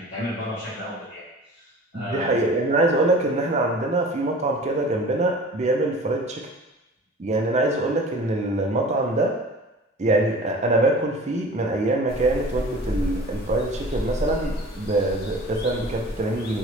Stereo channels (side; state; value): both; normal; correlation 0.42